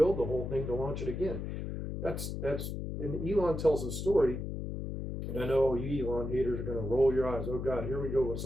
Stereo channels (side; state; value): left; noise; hum, 5 dB below the sound